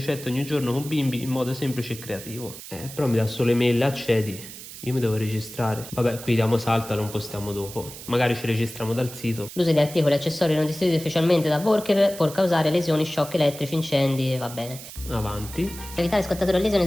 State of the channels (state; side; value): noise; right; hiss, 13 dB below the sound